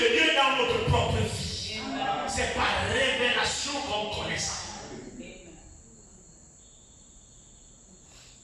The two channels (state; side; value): identical; both; correlation 1.00